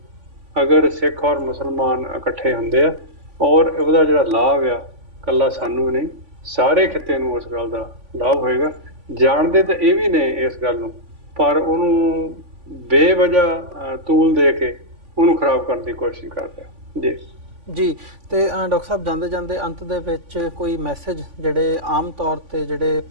ਅਗਰ ਸਿੱਖ ਔਰ ਮੁਸਲਮਾਨ ਇਕੱਠੇ ਹੁੰਦੇ ਆ ਔਰ ਉਹਦਾ ਜਿਹੜਾ ਲਾਭ ਆ ਇਕੱਲਾ ਸਾਨੂੰ ਨਹੀਂ ਸਾਰੇ ਖਿੱਤੇ ਨੂੰ ਉਸ ਗੱਲ ਦਾ ਲਾਭ ਹੋਏਗਾ। ਜਾਣਦੇ ਤਾਂ ਇਹ ਵੀ ਨੇ ਇਸ ਗੱਲ ਨੂੰ ਪਰ ਉਹਨੂੰ ਬੇਵਜ੍ਹਾ ਤੂਲ ਦੇ ਕੇ ਉਹਨੂੰ ਖਰਾਬ ਕਰਨ ਦੀ ਕੋਸ਼ਿਸ਼ ਕਰਦੇ ਆ। ਜੀ ਤੇ ਡਾਕਟਰ ਸਾਹਿਬ ਜਾਂਦੇ ਜਾਂਦੇ ਅੰਤ ਦੇ ਵਿੱਚ ਕੋਈ ਮੈਸੇਜ ਜਿਹੜੇ ਆਮ ਤੌਰ ਤੇ ਜਿਹੜੇ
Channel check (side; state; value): left; late; 3.5 ms